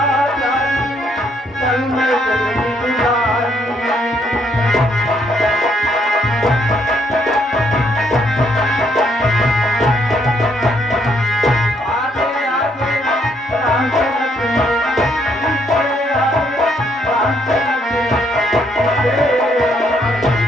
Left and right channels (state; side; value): normal; both; correlation 0.71